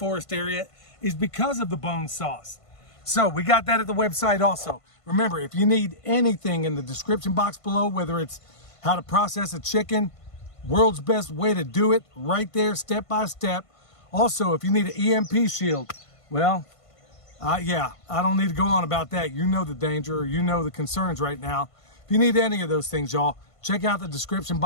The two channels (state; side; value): late; right; 1.5 ms